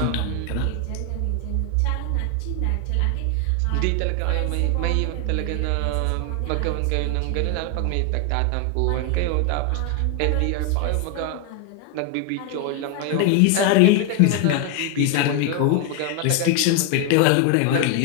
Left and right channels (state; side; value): different; both; correlation 0.01